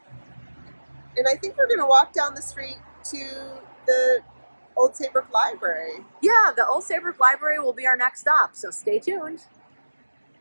And I think we're going to walk down the street to the Old Saybrook Library. Yeah, the Old Saybrook Library will be our next stop, so stay tuned.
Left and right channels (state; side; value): inverted; both; correlation -1.00